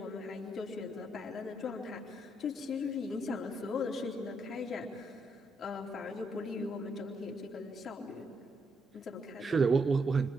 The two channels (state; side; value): normal; both; correlation 0.77